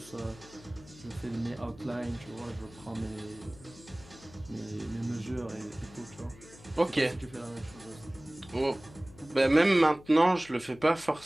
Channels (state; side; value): noise; left; hum, 21 dB below the sound